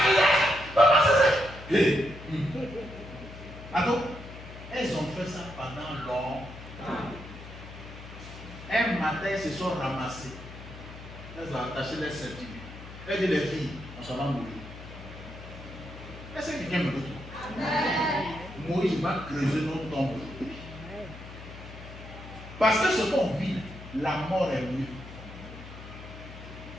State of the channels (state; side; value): noise; left; hum, 14 dB below the sound